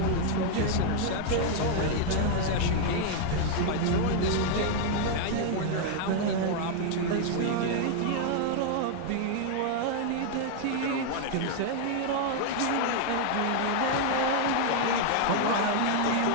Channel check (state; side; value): different; both; correlation 0.00